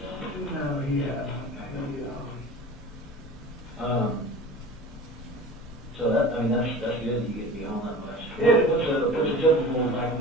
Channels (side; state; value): both; normal; correlation 0.38